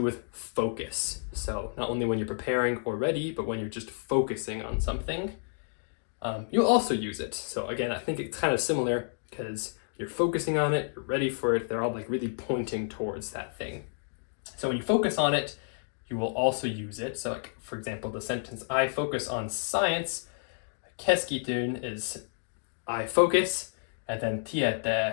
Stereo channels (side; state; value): right; silent; digital silence